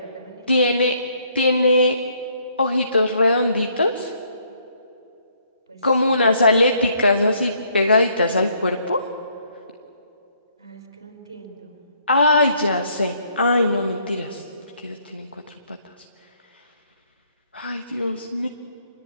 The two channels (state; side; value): inverted; both; correlation -0.68